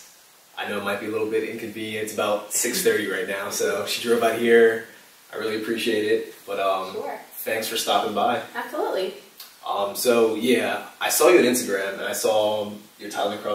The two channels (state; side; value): identical; both; correlation 1.00